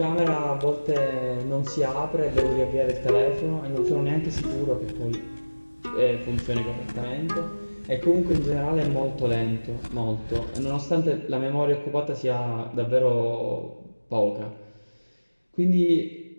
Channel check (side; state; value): both; inverted; correlation -1.00